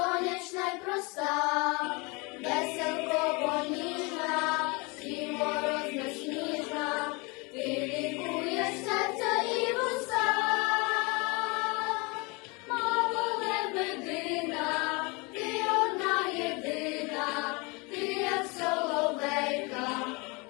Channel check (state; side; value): quieter; right; 28.3 dB